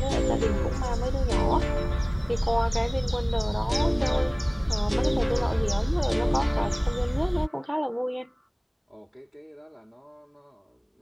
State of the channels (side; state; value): both; identical; correlation 1.00